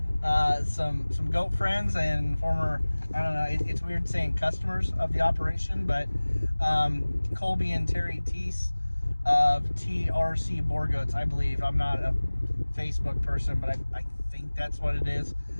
some goat friends and former, I don't know, it's weird saying customers of the operation, but Colby and Terry Teese of TRC Boer Goats, I believe. I'm not a Facebook person, but I think that's what it is.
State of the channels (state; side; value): inverted; both; correlation -1.00